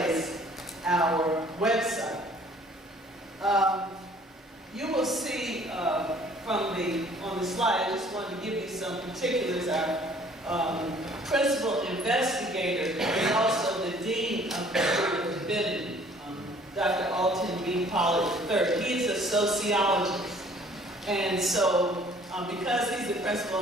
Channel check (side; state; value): both; normal; correlation 0.55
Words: our website. You will see on the slide, I just wanted to give you some particulars. Our principal investigator is also the Dean of the School of Divinity, Dr. Alton B. Pollard III. He is a sociologist. And so, because he's the